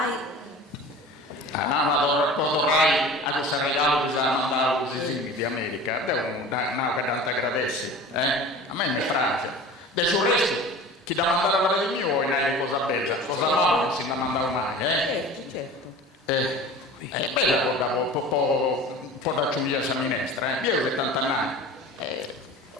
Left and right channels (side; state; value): both; normal; correlation 0.39